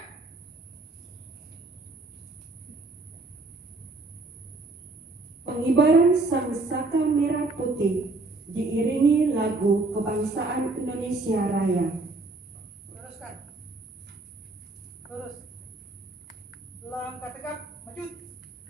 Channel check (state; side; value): quieter; left; 3.2 dB